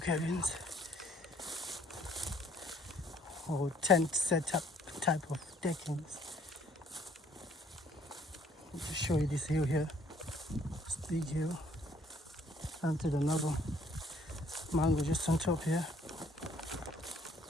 Or tent setup type of deckings. Let me show you this hill here. This big hill. Planted another mango just on top here.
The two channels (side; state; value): both; normal; correlation 0.62